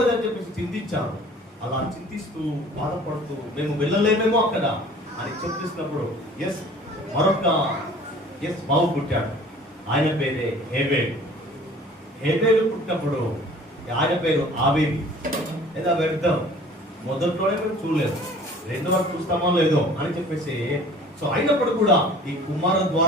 చెప్పేసి చింతించారు. అలా చింతిస్తూ బాధపడుతూ మేము వెళ్ళలేమేమో అక్కడ అని చెప్పిస్తున్నప్పుడు మరొక బాబు పుట్టాడు. ఆయన పేరే హేబేలు. హేబేలు పుట్టినప్పుడు ఆయన పేరు ఆబేలు. లేదా వెళ్దాం, మొదట్లోనే మేము చూడలేదు, రెండో వరకు చూస్తామో లేదో అని చెప్పేసి సో అయినప్పుడు కూడా ఈ కుమారుల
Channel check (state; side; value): normal; both; correlation 0.48